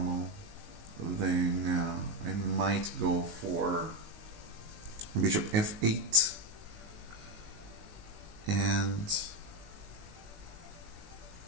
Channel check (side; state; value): left; late; 19 ms